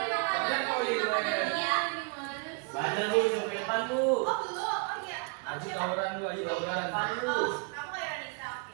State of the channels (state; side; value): quieter; left; 35.5 dB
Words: Kalian kok makanan ya. Bandel, Bu. Coketan, Bu. Oh, belum. Oh iya. Haji tawuran, Bu. Haji tawuran. Oh, kamu Ironisa,